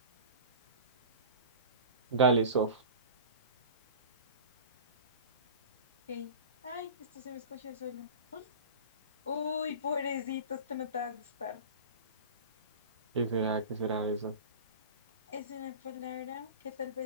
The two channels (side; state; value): both; inverted; correlation -0.33